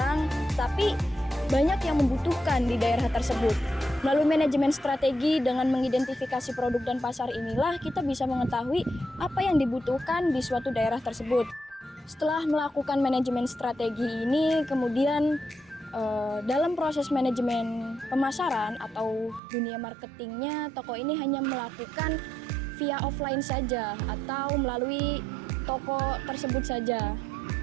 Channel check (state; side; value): drops out; left; at 19.4 s